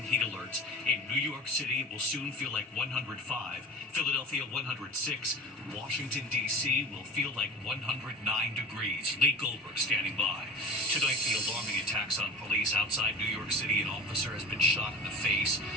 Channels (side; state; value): both; normal; correlation 0.36